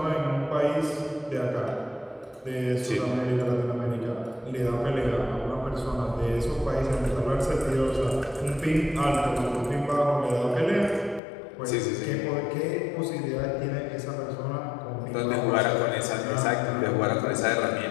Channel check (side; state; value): right; drops out; at 11.2 s